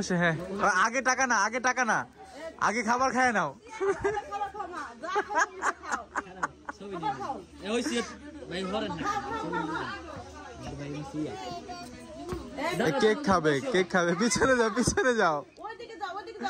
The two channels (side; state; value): both; identical; correlation 1.00